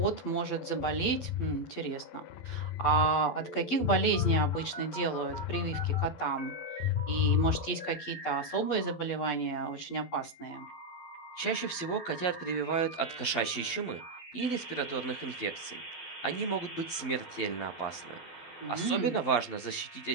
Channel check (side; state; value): right; late; 12 ms